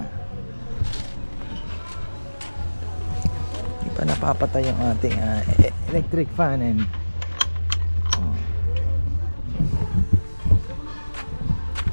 hindi pa napapatay yung ating electric fan and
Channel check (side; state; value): both; inverted; correlation -1.00